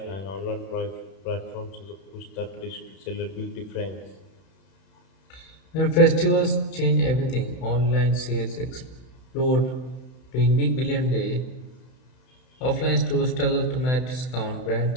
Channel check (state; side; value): late; right; 31 ms